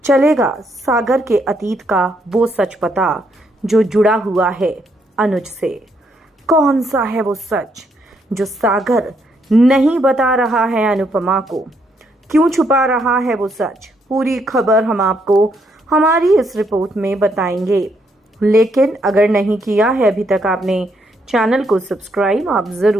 चलेगा सागर के अतीत का वो सच पता जो जुड़ा हुआ है अनुज से। कौन सा है वो सच जो सागर नहीं बता रहा है अनुपमा को? क्यों छुपा रहा है वो सच? पूरी खबर हम आपको हमारी इस रिपोर्ट में बताएंगे। लेकिन अगर नहीं किया है अभी तक आपने चैनल को सब्सक्राइब, आप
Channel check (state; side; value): normal; both; correlation 0.74